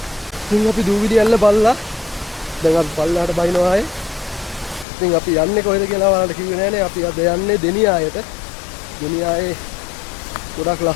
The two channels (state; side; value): drops out; right; at 4.9 s